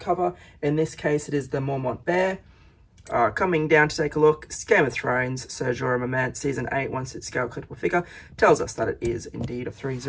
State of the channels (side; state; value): both; identical; correlation 1.00